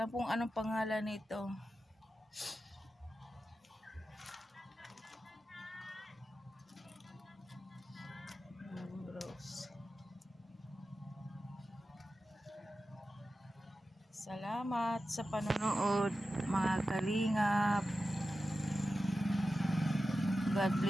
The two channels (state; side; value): normal; both; correlation 0.92